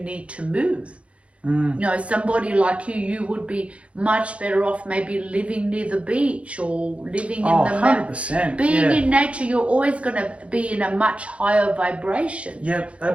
need to move. You know, somebody like you would be much better off maybe living near the beach or living in the 100%. Being in nature, you're always going to be in a much higher vibration. Yep,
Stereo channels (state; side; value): late; left; 0.062 ms